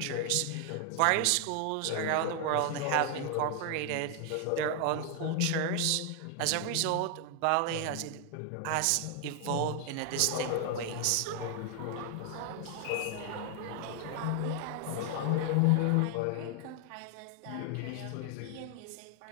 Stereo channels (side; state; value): both; different; correlation 0.00